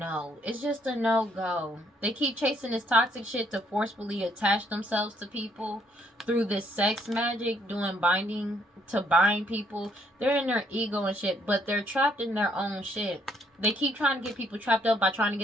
It's just a no-go. They keep chasing this toxic shit to forcefully attach themselves to people through this sex magic, doing binding to bind people. They're in their ego and shit, but they're trapped in their own shit. They keep trying to get people trapped up by trying to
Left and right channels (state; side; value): normal; both; correlation 0.68